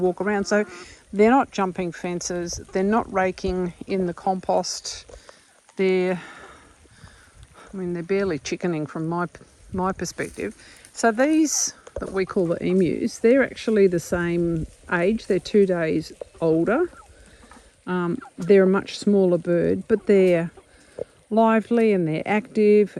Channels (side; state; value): both; identical; correlation 1.00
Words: around. So they're not jumping fences, they're not raking in the compost. They're barely chickening from my perspective. So these that we call the emus, they're actually the same age. They're 2 days older. They're a much smaller bird, but they're lively and they're active